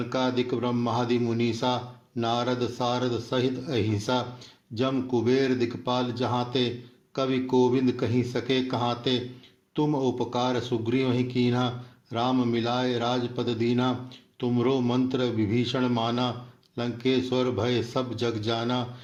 ब्रह्मादि मुनीसा, नारद सारद सहित अहिंसा, जम कुबेर दिक्पाल जहाते, कवि कोविंद कहीं सके कहाते, तुम उपकार सुग्रीव ही कीन्हा, राम मिलाए राजपद दीना, तुमरो मंत्र विभीषण माना, लंकेश्वर भय सब जग जाना,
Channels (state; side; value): identical; both; correlation 1.00